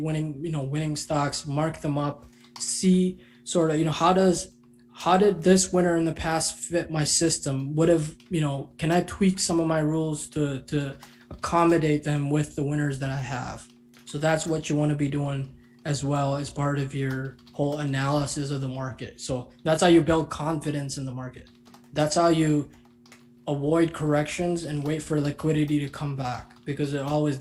stocks, mark them up, see sort of, how did this winner in the past fit my system? Can I tweak some of my rules to accommodate them with the winners that I have? So that's what you want to be doing as well as part of your whole analysis of the market. So that's how you build confidence in the market. That's how you avoid corrections and wait for liquidity to come back, because it always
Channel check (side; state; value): both; identical; correlation 1.00